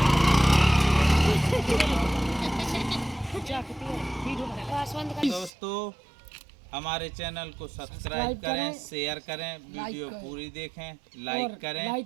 दोस्तों हमारे चैनल को सब्सक्राइब करें, शेयर करें, वीडियो पूरी देखें, लाइक करें,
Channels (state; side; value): drops out; left; at 5.5 s